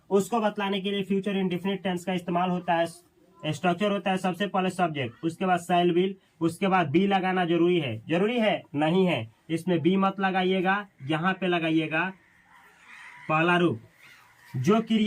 उसको बतलाने के लिए फ्यूचर इंडेफिनिट टेंस का इस्तेमाल होता है। स्ट्रक्चर होता है सबसे पहले सब्जेक्ट, उसके बाद शैल विल, उसके बाद बी लगाना जरूरी है। जरूरी है नहीं है, इसमें बी मत लगाइएगा, यहाँ पे लगाइएगा पहला रूप। जो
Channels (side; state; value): both; identical; correlation 1.00